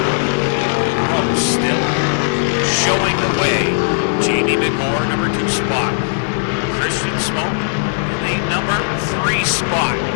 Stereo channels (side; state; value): right; silent; digital silence